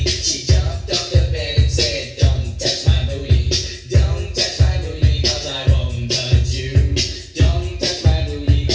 She jumped off the bed and said, "Don't touch my booty. Don't touch my booty cause I won't touch you. Don't touch my booty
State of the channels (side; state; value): both; identical; correlation 1.00